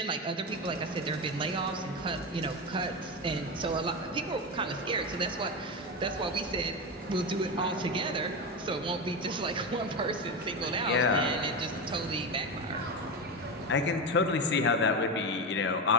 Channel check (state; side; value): normal; both; correlation 0.17